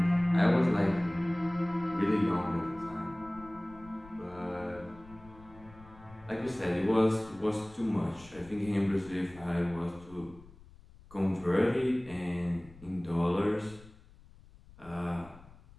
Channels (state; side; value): noise; left; rumble, 22 dB below the sound